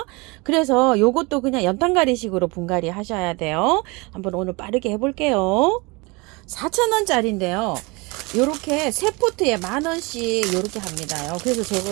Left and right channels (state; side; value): quieter; left; 26.6 dB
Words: 그래서 요것도 그냥 연탄가리식으로 분갈이 하셔야 돼요. 한번 오늘 빠르게 해볼게요. 4,000원짜리인데요. 요렇게 세 포트에 10,000원씩 요렇게 합니다요.